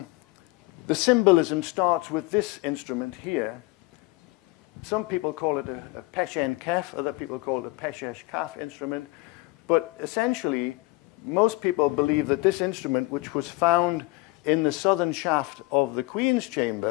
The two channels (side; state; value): right; quieter; 22.6 dB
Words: The symbolism starts with this instrument here. Some people call it a peshen kef, other people call it a peshesh kaf instrument. But essentially, most people believe that this instrument, which was found in the southern shaft of the Queen's